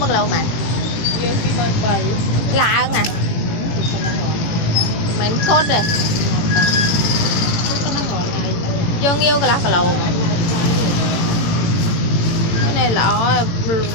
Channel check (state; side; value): late; right; 18 ms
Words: lâu mà? Nghiêu khi mà 7 lạ hơn nè. Mình cốt rồi. Vô nghiêu cái lá cả lâu mà. Cái này là